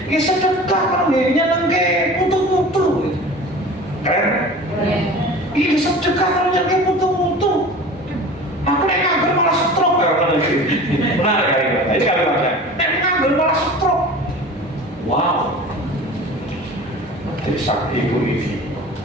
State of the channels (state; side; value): normal; both; correlation 0.39